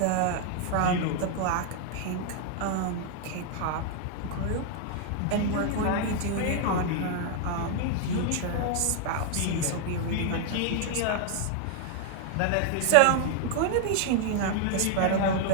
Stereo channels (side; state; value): both; different; correlation 0.00